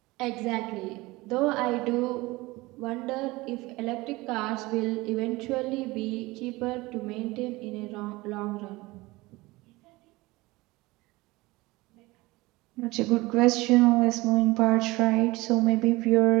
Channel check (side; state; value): left; quieter; 21.2 dB